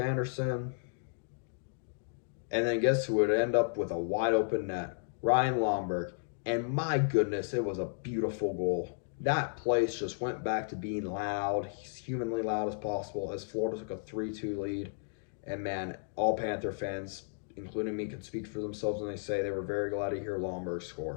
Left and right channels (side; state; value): right; silent; digital silence